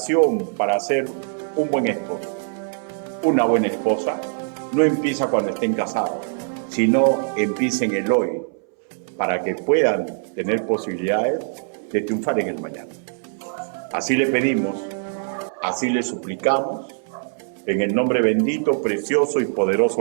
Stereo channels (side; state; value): left; silent; 64 dB below the other